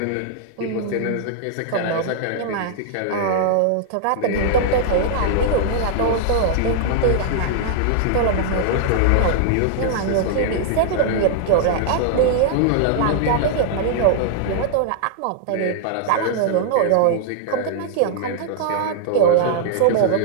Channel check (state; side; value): different; both; correlation -0.01